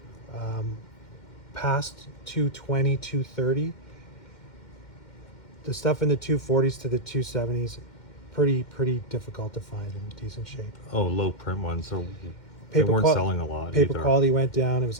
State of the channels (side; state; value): right; late; 2.1 ms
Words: Past 220, 230, the stuff in the 240s to the 270s, pretty difficult to find in decent shape. Oh, low print ones. So they Paper weren't qual- selling a lot. Paper either. quality went down. It was